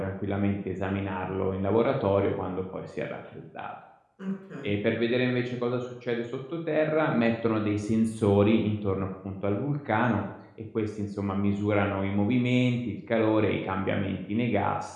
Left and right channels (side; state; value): both; identical; correlation 1.00